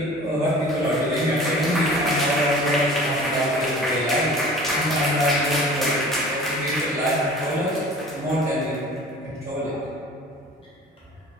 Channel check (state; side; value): normal; both; correlation 0.44